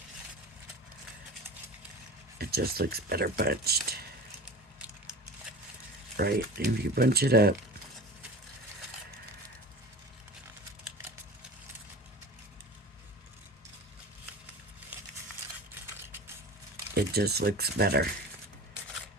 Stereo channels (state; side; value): normal; both; correlation 0.34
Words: it just looks better bunched. Right? If you bunch it up, it just looks better.